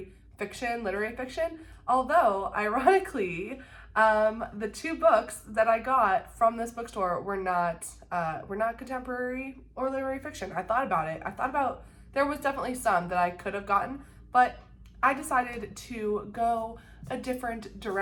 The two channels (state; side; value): identical; both; correlation 1.00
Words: fiction, literary fiction, although ironically, the 2 books that I got from this bookstore were not contemporary or literary fiction. I thought about there was definitely some that I could have gotten, but I decided to go a different